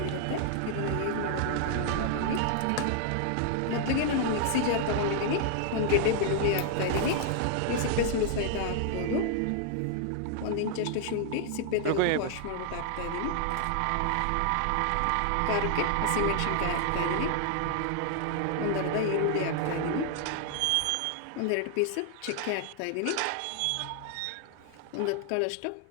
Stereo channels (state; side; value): different; both; correlation 0.00